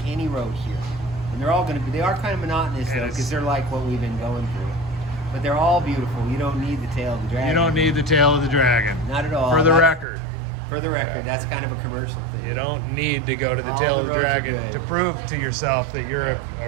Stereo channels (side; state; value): left; drops out; at 10.1 s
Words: any road here. And they're all going to be, they are kind of monotonous though, because they're like what we've been going through. But they're all beautiful. You don't need the Tail of the Dragon. You don't need the Tail of the Dragon. Not at all. For the record. For the record, that's kind of a commercial thing. You don't need to go to the Tail of the Dragon to prove to yourself that you're